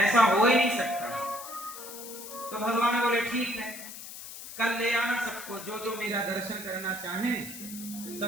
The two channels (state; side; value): noise; left; hiss, 12 dB below the sound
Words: हो ही नहीं सकता। तो भगवान बोले, ठीक है, कल ले आना सबको, जो जो मेरा दर्शन करना चाहें